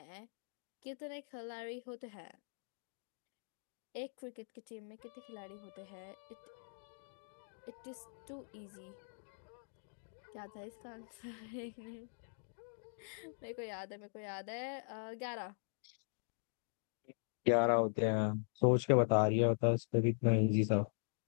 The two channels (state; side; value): silent; right; digital silence